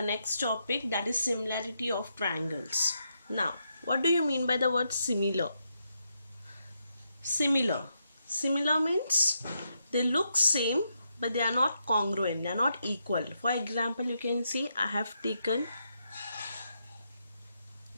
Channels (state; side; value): inverted; both; correlation -0.81